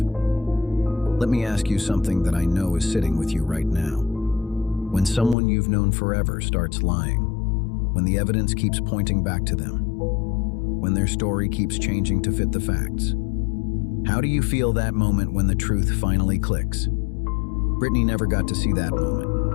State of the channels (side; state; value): right; drops out; at 5.4 s